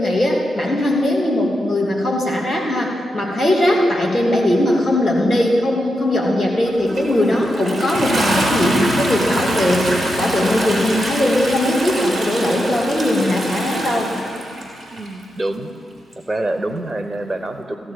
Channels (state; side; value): normal; both; correlation 0.86